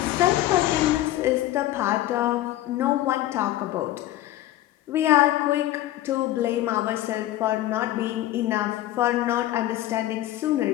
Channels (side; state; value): right; quieter; 14.7 dB